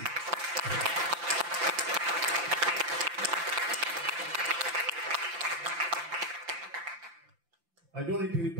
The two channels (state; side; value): late; left; 5.8 ms